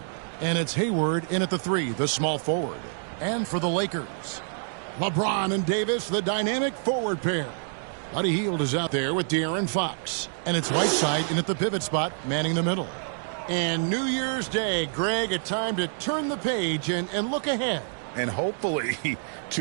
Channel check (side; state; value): left; silent; digital silence